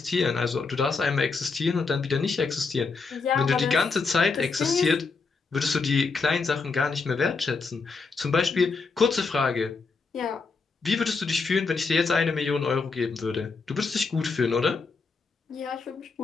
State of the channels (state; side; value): quieter; right; 4.5 dB